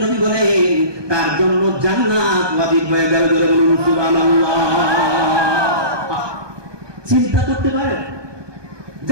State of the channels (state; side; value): late; left; 1.2 ms